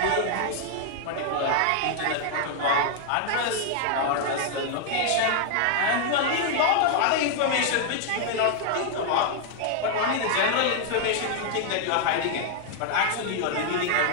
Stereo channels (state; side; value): different; both; correlation 0.00